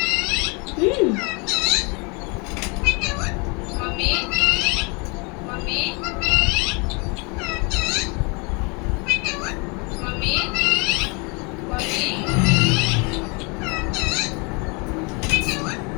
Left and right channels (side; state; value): right; quieter; 31.2 dB